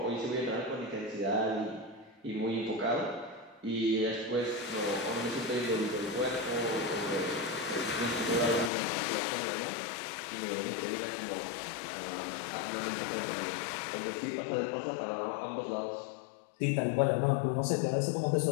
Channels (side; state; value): right; drops out; at 8.7 s